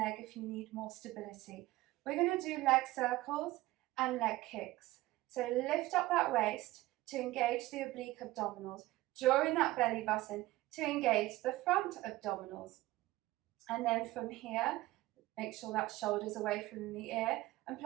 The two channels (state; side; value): quieter; left; 17.9 dB